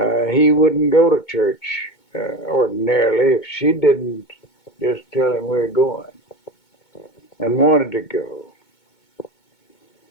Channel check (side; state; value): right; late; 2.2 ms